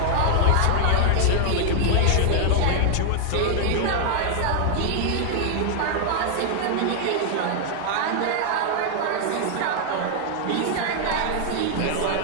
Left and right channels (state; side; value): different; both; correlation 0.00